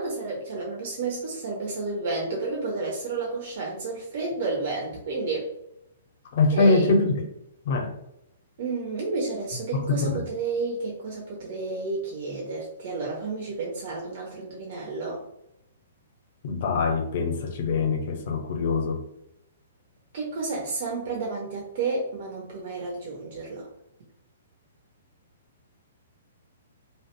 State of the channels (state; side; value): inverted; both; correlation -0.44